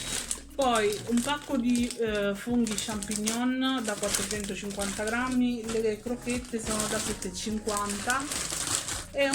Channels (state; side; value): identical; both; correlation 1.00